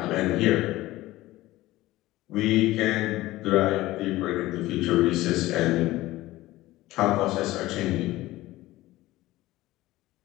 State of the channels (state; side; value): quieter; right; 17.4 dB